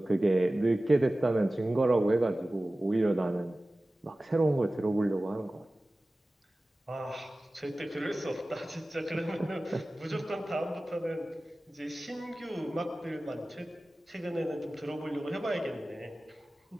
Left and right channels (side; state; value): both; normal; correlation 0.96